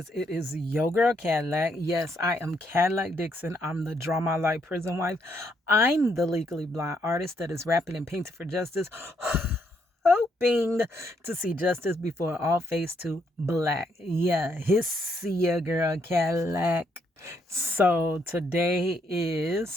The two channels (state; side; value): normal; both; correlation 0.74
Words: Yo Girl Cadillac. Yes, I am Cadillac Dixon. I'm the Draw My Life prison wife. I'm the legally blind artist that is rapping and painting for justice, hoping to see justice before all face to black. Yeah, his Yo Girl Cadillac. So today is